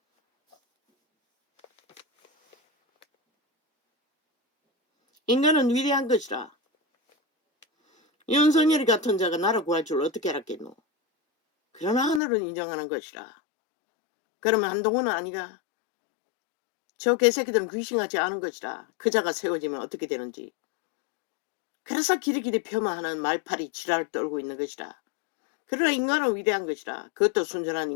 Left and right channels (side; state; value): right; drops out; at 12.2 s